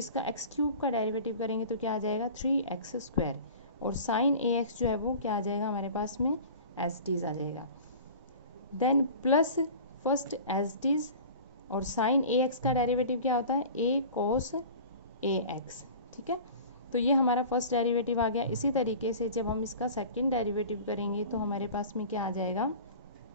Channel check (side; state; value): both; inverted; correlation -0.39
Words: एक्स क्यूब का डेरिवेटिव करेंगे तो क्या आ जाएगा 3x स्क्वायर, और साइन ax जो है वो क्या आ जाएगा हमारे पास में एज टीज आ जाएगा, then plus first as it is, और साइन ax का डेरिवेटिव क्या होता है a cos ax। ठीक है, तो ये हमारा फर्स्ट डेरिवेटिव आ गया। इसी तरीके से जब हम इसका सेकंड डेरिवेटिव करेंगे तो हमारे पास में क्या आ जाएगा,